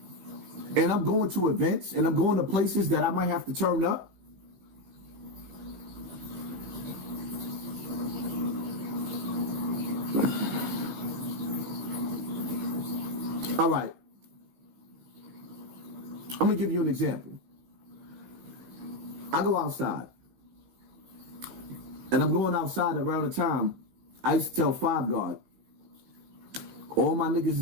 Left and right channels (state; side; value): late; left; 16 ms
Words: and I'm going to events and I'm going to places that I might have to turn up, all right, I'm gonna give you an example. I go outside and I'm going outside around the time I used to tell Five Guard, all my niggas